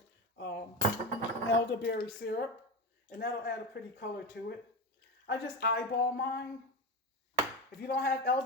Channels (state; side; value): normal; both; correlation 0.20